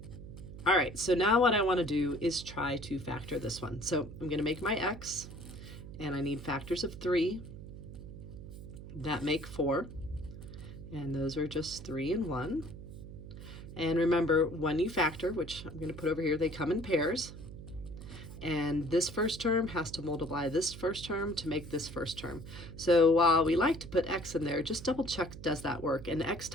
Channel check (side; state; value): right; noise; hum, 12 dB below the sound